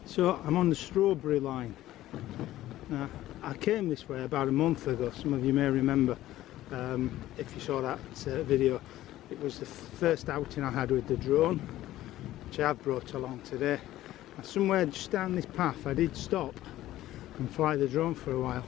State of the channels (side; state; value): right; quieter; 14.7 dB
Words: So I'm on the strawberry line. Now, I came this way about a month ago, some of you may remember, if you saw that video. It was the first outing I had with the drone, which I have brought along today. And somewhere just down this path I did stop and fly the drone for a while,